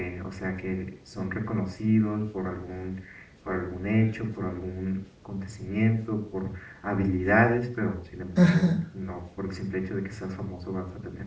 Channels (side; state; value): both; identical; correlation 1.00